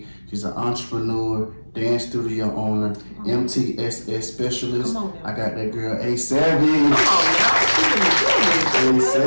She's an entrepreneur, dance studio owner, MTSS specialist. I got that girl, A.SAVAGE.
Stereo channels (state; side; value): inverted; both; correlation -1.00